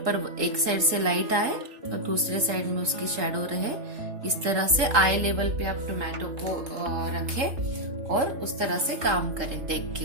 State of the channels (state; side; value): late; left; 3.8 ms